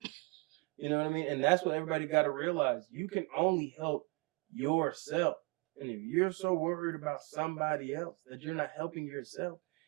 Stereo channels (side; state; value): left; quieter; 28.0 dB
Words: You know what I mean? And that's what everybody got to realize. You can only help yourself. And if you're so worried about somebody else that you're not helping yourself,